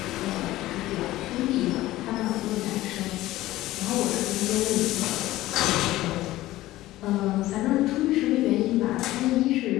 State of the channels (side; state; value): right; quieter; 16.4 dB